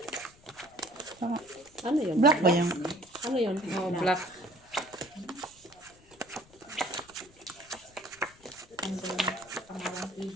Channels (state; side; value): noise; left; rumble, 26 dB below the sound